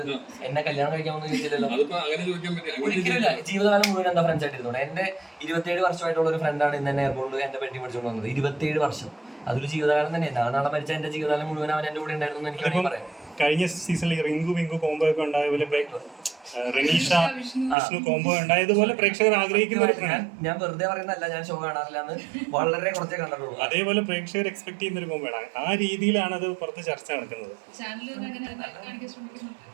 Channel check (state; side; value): drops out; left; at 17.8 s